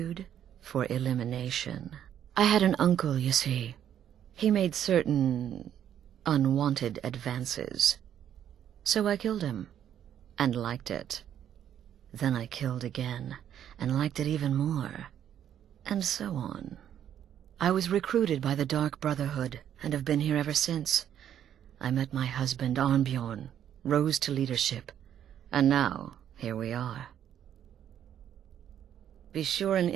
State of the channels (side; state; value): left; quieter; 10.0 dB